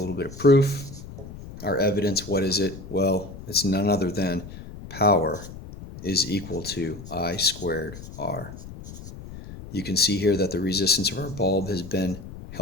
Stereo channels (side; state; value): left; noise; rumble, 13 dB below the sound